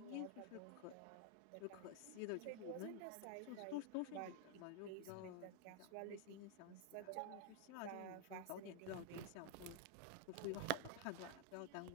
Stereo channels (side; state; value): both; different; correlation 0.00